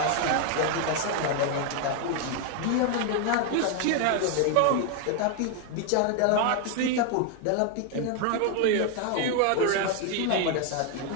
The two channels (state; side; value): different; both; correlation 0.01